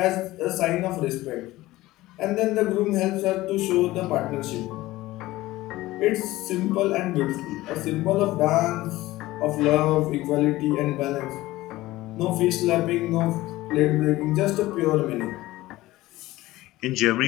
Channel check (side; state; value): right; quieter; 17.6 dB